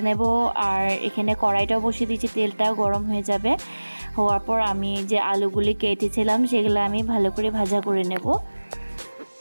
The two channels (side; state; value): both; inverted; correlation -1.00